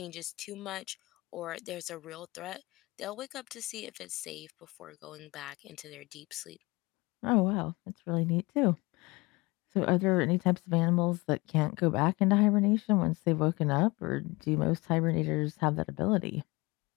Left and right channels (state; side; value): quieter; right; 23.6 dB